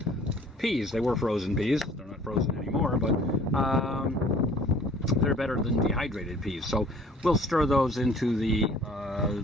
peas. They were frozen peas. They're not frozen anymore, but they're better than dehydrated peas. So we'll stir those into the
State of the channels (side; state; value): both; normal; correlation 0.53